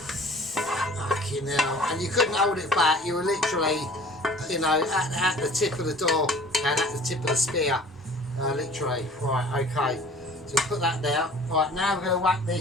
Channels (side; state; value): both; normal; correlation 0.48